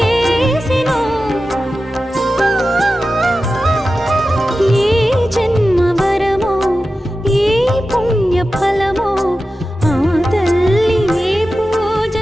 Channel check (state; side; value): normal; both; correlation 0.93